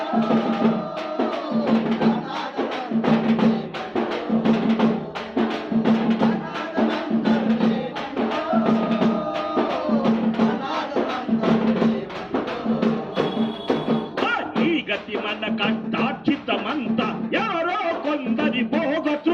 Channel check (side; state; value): both; identical; correlation 1.00